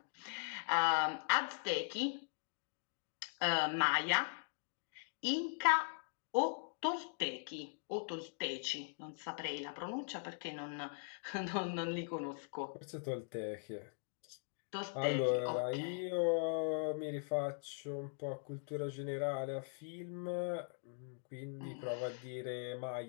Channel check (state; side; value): silent; right; digital silence